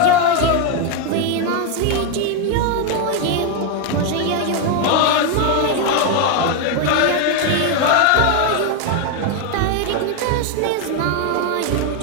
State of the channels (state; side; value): different; both; correlation 0.01